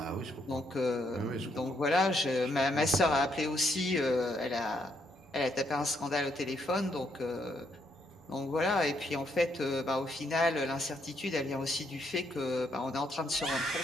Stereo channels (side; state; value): both; normal; correlation 0.74